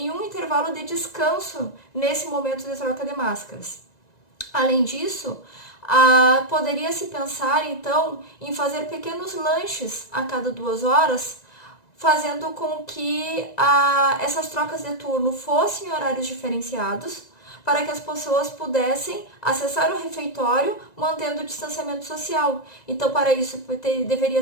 um intervalo de descanso nesse momento de troca de máscaras. Além disso, poderia se pensar, então, em fazer pequenos lanches a cada 2 horas, fazendo com que essas trocas de turno fossem em horários diferenciados, para que as pessoas pudessem acessar o refeitório mantendo o distanciamento social. Então, para isso,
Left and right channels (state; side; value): late; right; 1.9 ms